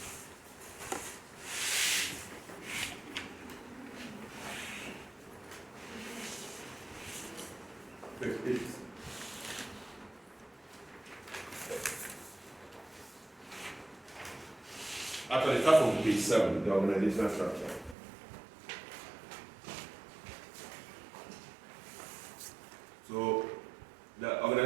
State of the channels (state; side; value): drops out; left; at 17.9 s